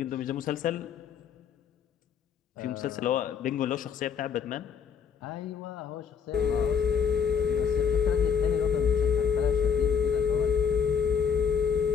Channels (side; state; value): right; quieter; 6.9 dB